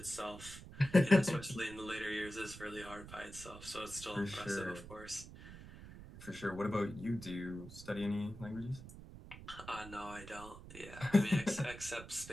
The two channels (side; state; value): right; noise; rumble, 14 dB below the sound